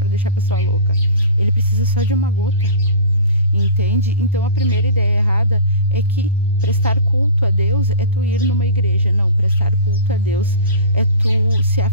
deixar a pessoa louca. Ele precisa só de uma gota, entende? Então a primeira ideia errada é que prestar culto a Deus é tu ir numa igreja. Não, prestar culto a Deus é tu se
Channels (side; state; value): both; inverted; correlation -0.34